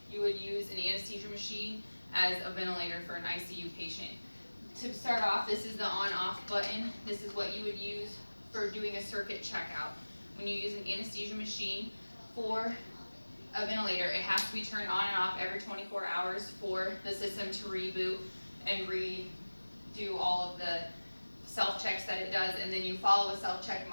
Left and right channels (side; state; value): both; inverted; correlation -1.00